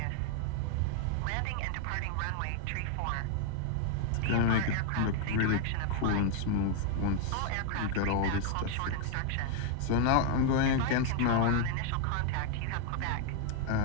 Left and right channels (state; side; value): different; both; correlation 0.00